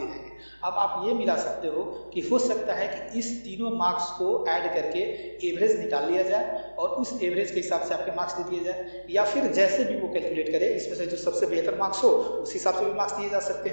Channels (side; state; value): both; inverted; correlation -1.00